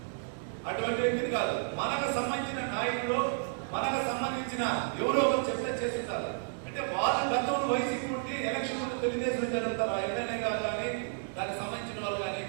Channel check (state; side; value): silent; left; digital silence